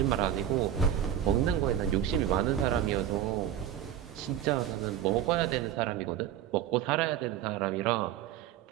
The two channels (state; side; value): quieter; left; 10.5 dB